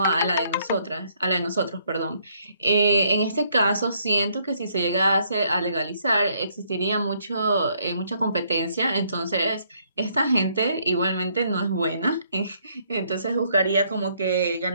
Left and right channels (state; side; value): inverted; both; correlation -0.69